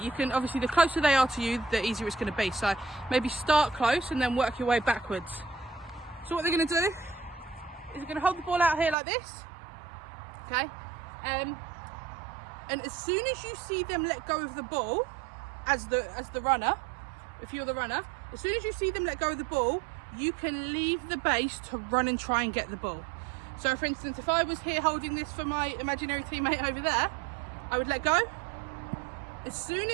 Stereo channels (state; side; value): drops out; left; at 9.0 s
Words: You can, obviously, the closer they are to you, the easier it's going to be. So maybe start close and then work your way backwards. So what they're going to do is they're going to hold the ball out here like this. Okay. And as soon as you see them let go of the ball, as the runner, if you're the runner, as soon as you see them let go of the ball, you can leave the base to run and try and get the ball. So for instance, if I was here holding this for my imaginary teammate over there, I would let go. As soon